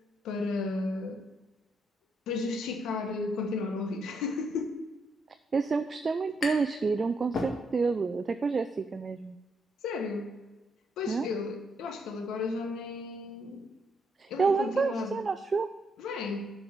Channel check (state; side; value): normal; both; correlation 0.76